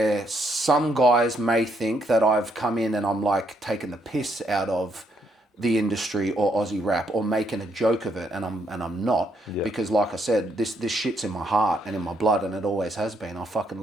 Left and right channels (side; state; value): both; normal; correlation 0.74